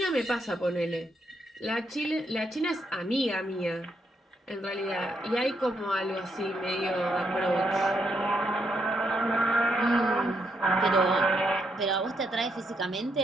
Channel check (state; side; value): normal; both; correlation 0.77